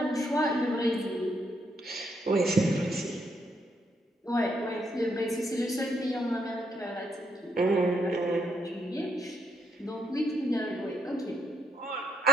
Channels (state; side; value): normal; both; correlation 0.76